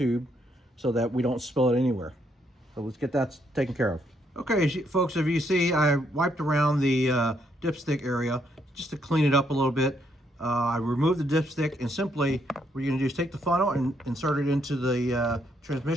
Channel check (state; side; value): normal; both; correlation 0.74